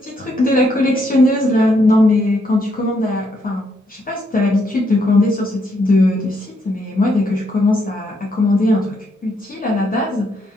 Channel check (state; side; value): normal; both; correlation 0.75